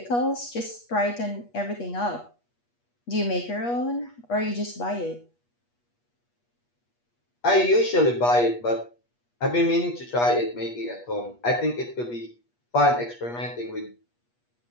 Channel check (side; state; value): right; late; 8.4 ms